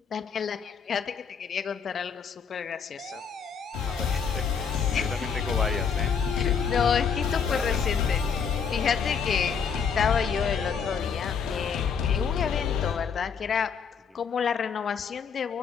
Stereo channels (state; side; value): quieter; right; 6.5 dB